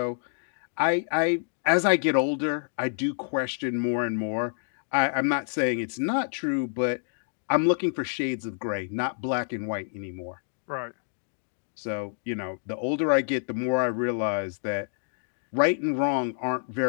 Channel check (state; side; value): silent; right; digital silence